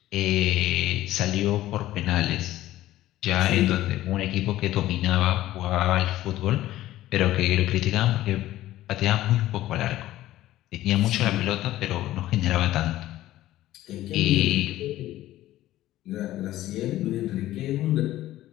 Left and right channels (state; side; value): quieter; right; 14.8 dB